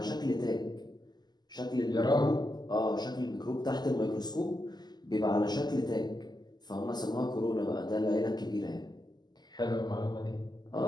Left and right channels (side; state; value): right; late; 0.20 ms